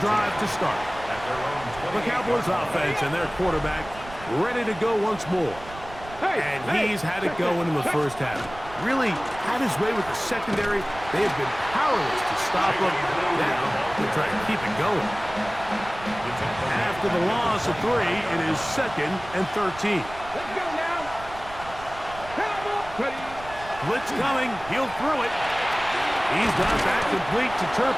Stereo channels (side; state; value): right; noise; rumble, 16 dB below the sound